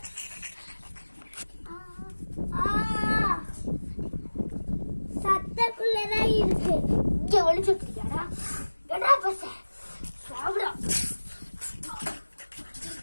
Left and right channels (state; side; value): inverted; both; correlation -1.00